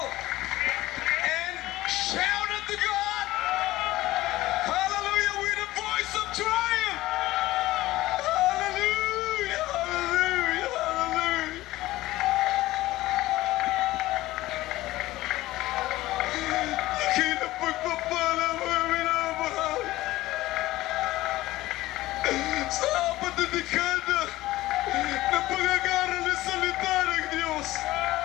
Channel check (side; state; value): right; quieter; 17.1 dB